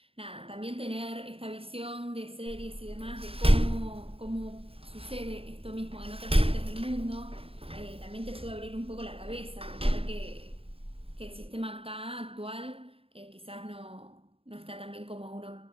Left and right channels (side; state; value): left; late; 0.27 ms